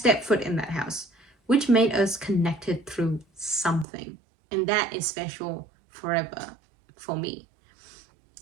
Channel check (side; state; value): left; drops out; at 3.9 s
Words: foot in that house, which made us connected through something. And that is special forever for me.